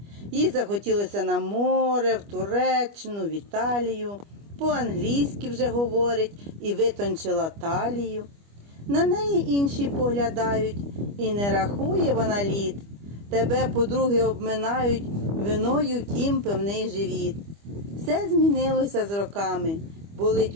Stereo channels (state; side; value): late; left; 25 ms